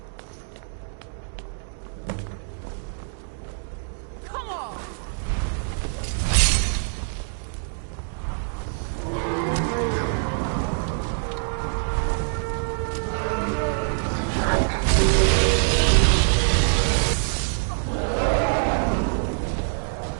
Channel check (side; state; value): left; silent; digital silence